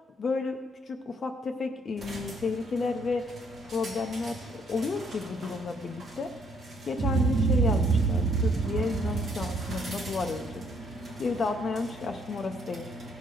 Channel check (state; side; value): normal; both; correlation 0.67